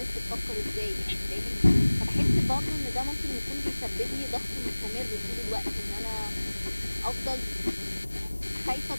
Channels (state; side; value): inverted; both; correlation -1.00